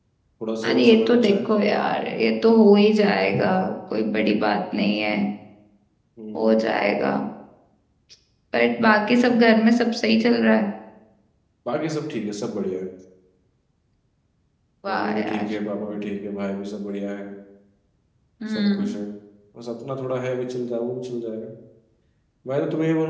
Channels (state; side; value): identical; both; correlation 1.00